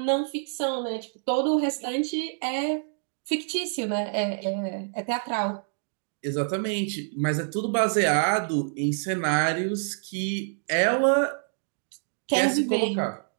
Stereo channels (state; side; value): silent; left; digital silence